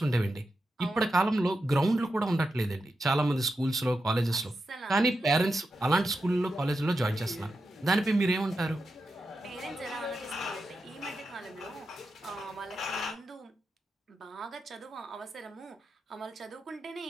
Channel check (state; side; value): normal; both; correlation 0.88